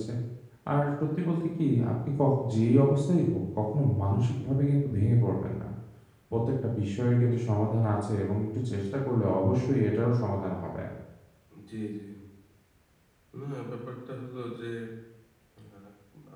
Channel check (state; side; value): identical; both; correlation 1.00